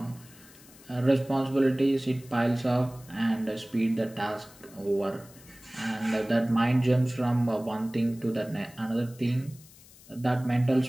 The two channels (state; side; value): noise; left; hiss, 23 dB below the sound